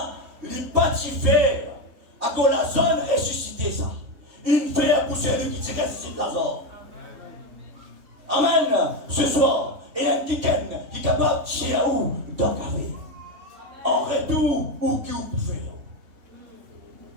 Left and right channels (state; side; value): late; left; 3.3 ms